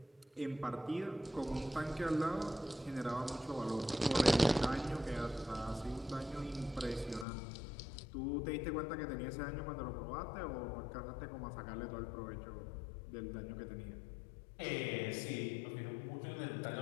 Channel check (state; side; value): drops out; right; at 7.2 s